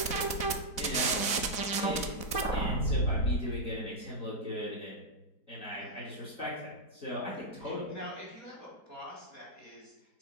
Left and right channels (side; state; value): right; late; 4.1 ms